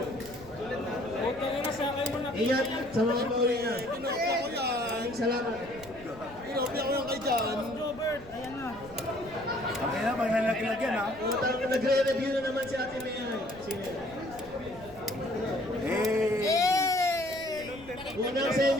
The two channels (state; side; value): noise; right; rumble, 19 dB below the sound